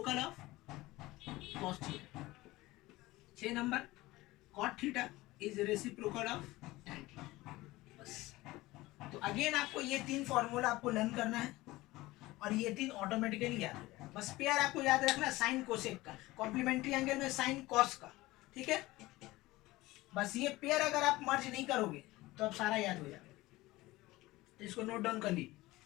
of cos theta। 6 number, cot theta is reciprocal of tan theta। बस, तो again आपको ये 3 formula आपको learn करना है और ये 3 ऑटोमेटिकली याद हो जाएगा। बस पेयर आपको याद रखना साइन कोसेक का, कॉम्प्लीमेंट्री एंगल में साइन कॉस का। ठीक है, बस ये पेयर अगर आप मर्ज नहीं करोगे तो अब सारा याद हो जाएगा। तो इसको नोट डाउन कर लीजिए।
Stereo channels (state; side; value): quieter; right; 19.1 dB